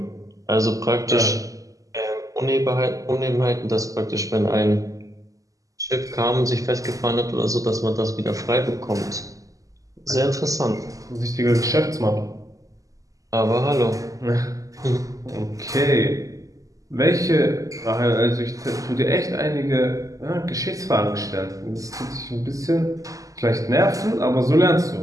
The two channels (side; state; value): left; late; 0.16 ms